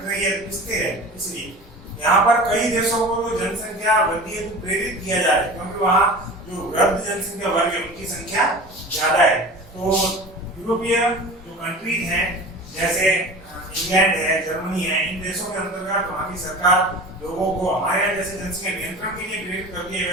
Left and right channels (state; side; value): normal; both; correlation 0.36